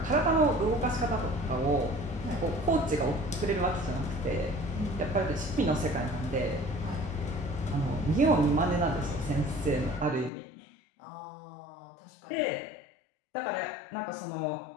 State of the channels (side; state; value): right; drops out; at 10.3 s